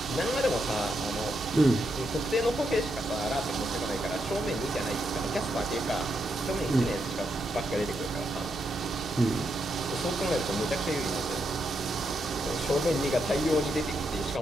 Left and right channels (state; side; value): noise; right; hum, 21 dB below the sound